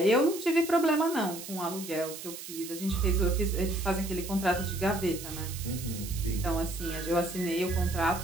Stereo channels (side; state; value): right; noise; hiss, 11 dB below the sound